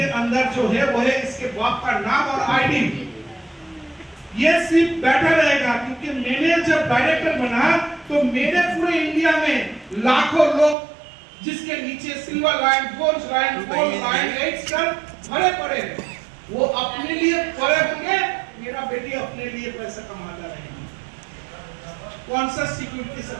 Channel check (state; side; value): drops out; left; at 10.8 s